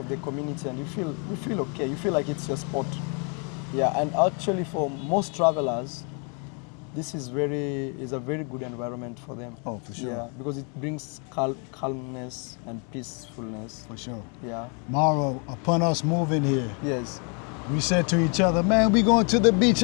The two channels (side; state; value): right; quieter; 37.4 dB